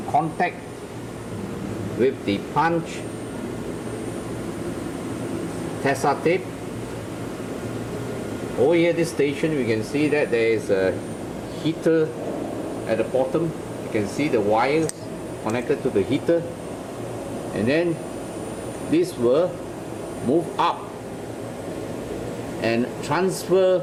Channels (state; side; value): identical; both; correlation 1.00